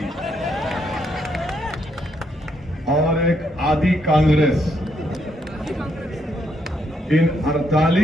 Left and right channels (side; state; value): both; normal; correlation 0.75